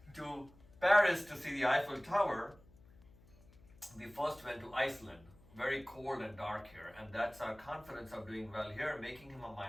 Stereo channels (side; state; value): left; noise; hum, 25 dB below the sound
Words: to Paris to see the Eiffel Tower, we first went to Iceland, very cold and dark here, and that's our confidence of doing well here, making him a